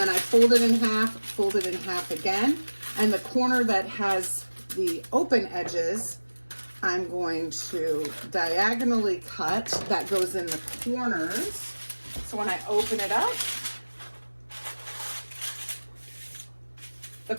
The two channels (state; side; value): inverted; both; correlation -1.00